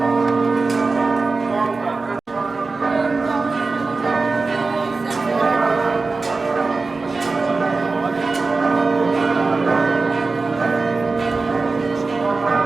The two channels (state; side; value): quieter; left; 3.9 dB